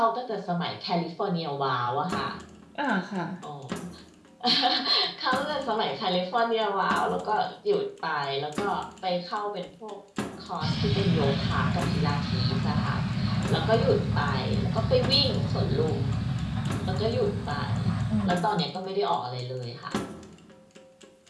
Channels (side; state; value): both; identical; correlation 1.00